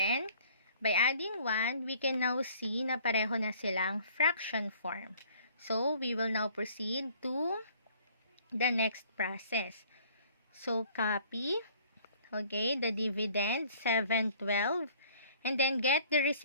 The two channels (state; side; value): inverted; both; correlation -0.55